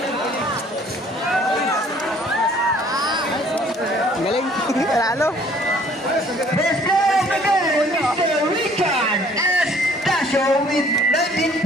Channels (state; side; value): normal; both; correlation 0.57